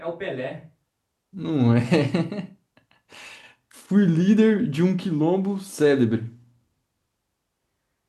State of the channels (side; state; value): both; identical; correlation 1.00